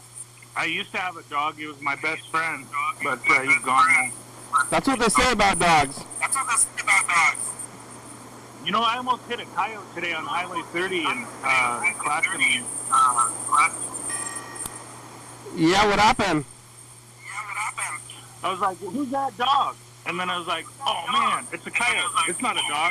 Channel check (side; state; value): both; identical; correlation 1.00